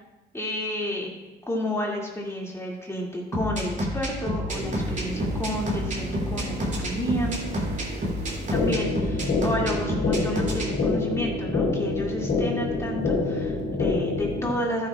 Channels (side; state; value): both; normal; correlation 0.53